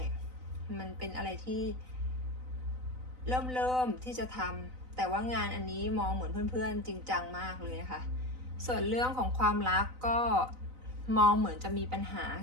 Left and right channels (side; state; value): left; late; 4.0 ms